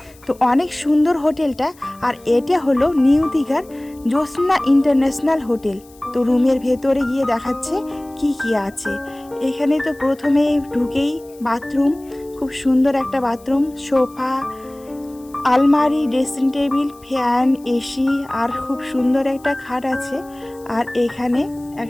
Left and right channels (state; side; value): noise; left; hiss, 26 dB below the sound